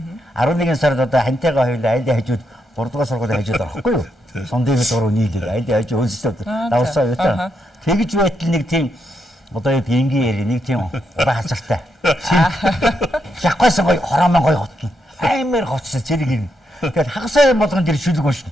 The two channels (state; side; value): normal; both; correlation 0.81